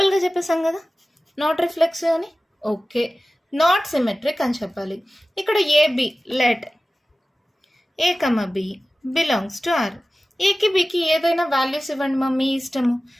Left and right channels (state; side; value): normal; both; correlation 0.96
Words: చెప్పేసాం కదా నాట్ రిఫ్లెక్సివ్ అని. ఓకే, నాట్ సిమెట్రిక్ అని చెప్పాలి. ఇక్కడ a b let a comma b belongs to R. ఏకి బికి ఏదైనా వాల్యూస్ ఇవ్వండి మా మీ ఇష్టము.